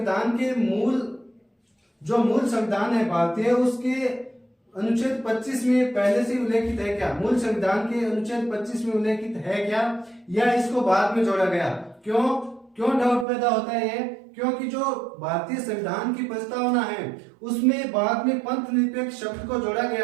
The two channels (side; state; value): left; drops out; at 13.2 s